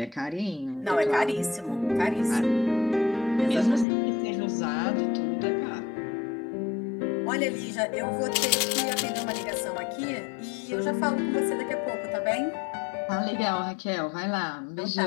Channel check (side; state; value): right; drops out; at 3.9 s